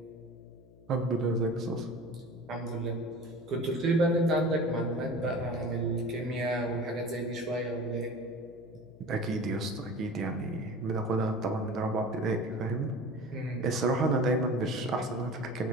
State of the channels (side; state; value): left; noise; hum, 24 dB below the sound